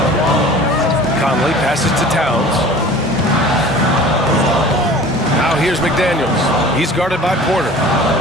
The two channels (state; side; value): normal; both; correlation 0.43